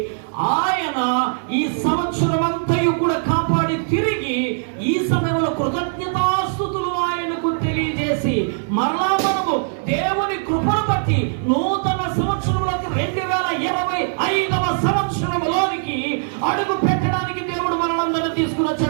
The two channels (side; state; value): left; silent; 65 dB below the other